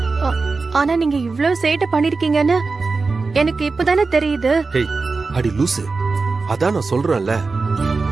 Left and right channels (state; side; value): quieter; left; 4.1 dB